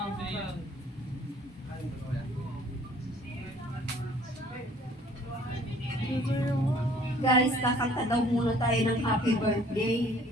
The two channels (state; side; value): normal; both; correlation 0.56